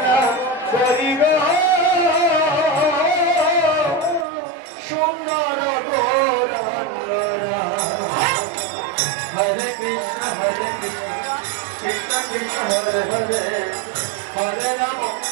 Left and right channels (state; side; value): drops out; left; at 4.2 s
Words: না করি গো সুন্দর গৌরাঙ্গরা হরে কৃষ্ণ কৃষ্ণ কৃষ্ণ হরে হরে হরে রাম